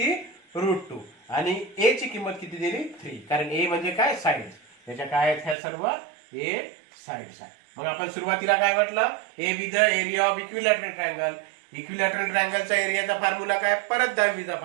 √2 आणि ए ची किंमत किती दिली 3. कारण ए म्हणजे काय साइड. त्याच्या काय आहेत ह्या सर्व ए साइड्स आहे. मग आपण सुरुवातीला काय म्हटलं a be the area of equilateral triangle. Equilateral ट्रायंगलचा एरियाचा फॉर्म्युला काय परत 10वीचा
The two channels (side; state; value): left; drops out; at 5.6 s